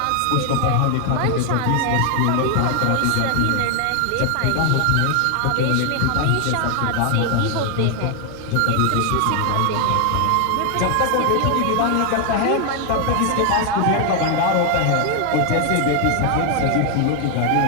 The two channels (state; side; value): different; both; correlation 0.00